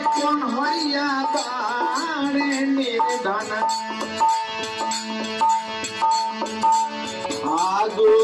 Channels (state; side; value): identical; both; correlation 1.00